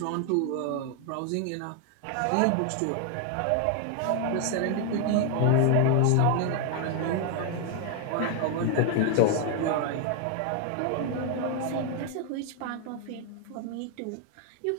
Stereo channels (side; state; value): both; different; correlation 0.00